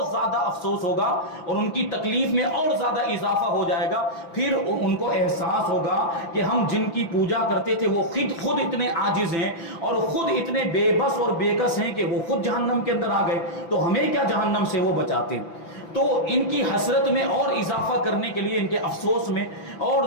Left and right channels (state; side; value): late; right; 5.9 ms